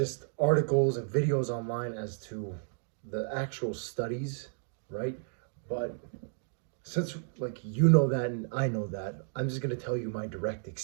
articles and videos online as to the actual studies, right? But since like you know that and I know that, I'm just gonna tell you my direct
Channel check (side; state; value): left; silent; digital silence